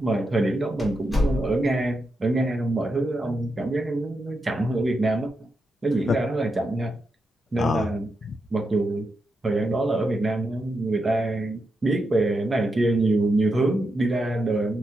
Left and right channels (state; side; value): normal; both; correlation 0.86